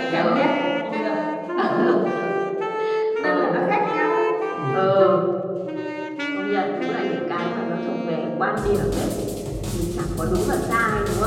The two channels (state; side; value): identical; both; correlation 1.00